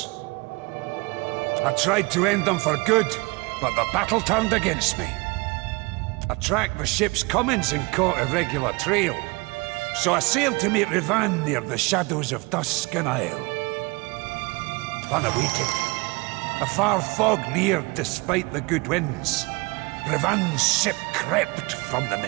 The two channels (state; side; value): quieter; left; 26.3 dB